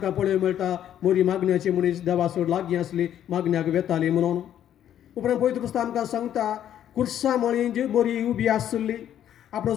पळोवंक मेळटा मोरी मागण्याची मनीस देवा सोड लागीं आसली, मागण्याक वेताली म्हणून. उपरांत पवित्र पुस्तक आमकां सांगता कुर्सा मळीं जी मोरी उबी आसली.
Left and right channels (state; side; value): quieter; right; 10.6 dB